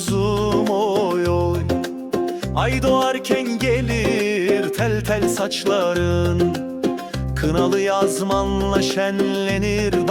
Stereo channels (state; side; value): identical; both; correlation 1.00